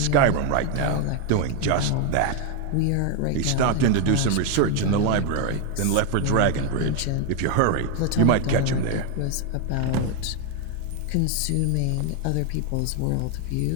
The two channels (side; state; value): both; different; correlation 0.01